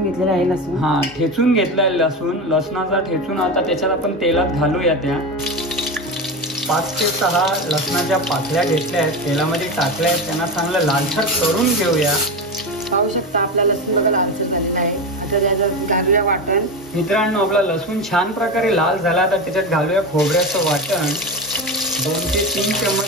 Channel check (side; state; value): both; normal; correlation 0.20